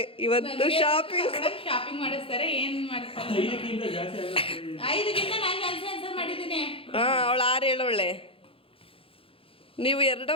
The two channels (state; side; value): late; right; 0.27 ms